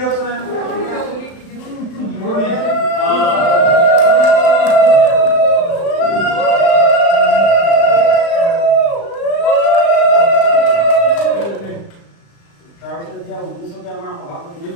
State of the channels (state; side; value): late; right; 35 ms